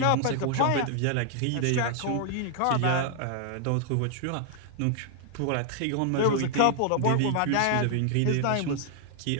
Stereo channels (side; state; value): both; different; correlation 0.00